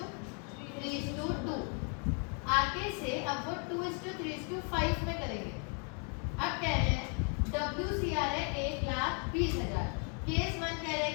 आगे से अब वो 2:3:5 में करेंगे। अब कह रहे हैं WCR है 1,20,000। केस 1 कह रहे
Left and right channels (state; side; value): quieter; right; 39.4 dB